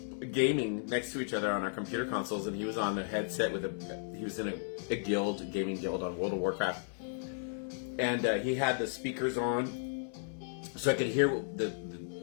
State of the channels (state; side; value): silent; right; 55 dB below the other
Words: gaming next to each other on our computer consoles, and he was on a headset he was in a gaming guild on World of Warcraft, and he had the speakers on, so I could hear